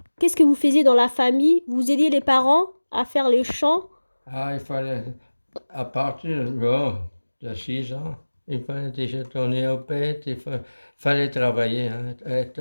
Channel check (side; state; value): both; inverted; correlation -1.00